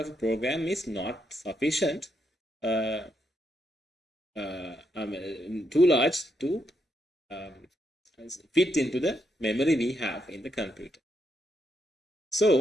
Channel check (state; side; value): normal; both; correlation 0.80